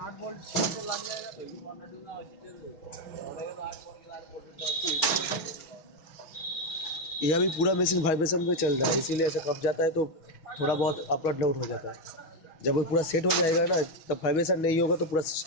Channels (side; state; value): right; late; 6.2 ms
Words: bolt लग यह भी पूरा मशीन वाइब्रेशन पे चल रहा है, इसीलिए ऐसा कब जाता है तो थोड़ा बहुत अपवर्ड डाउन हो जाता है। जब वो पूरा सेट हो जाएगा ना, तब वाइब्रेशन नहीं होगा तो पूरा